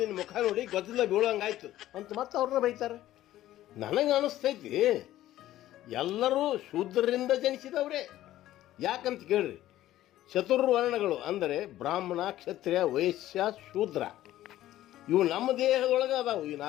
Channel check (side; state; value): right; quieter; 14.1 dB